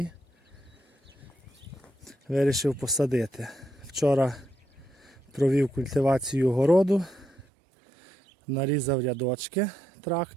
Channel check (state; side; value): drops out; left; at 7.4 s